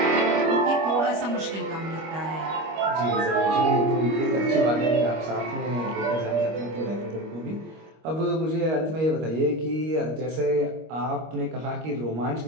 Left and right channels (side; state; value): left; late; 25 ms